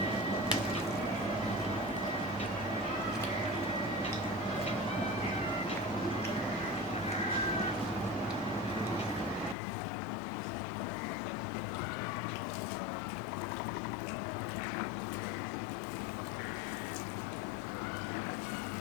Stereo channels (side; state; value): right; drops out; at 9.6 s